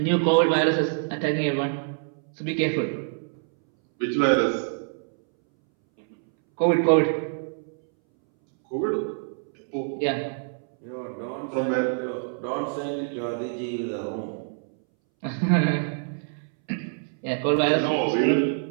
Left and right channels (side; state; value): left; silent; 61 dB below the other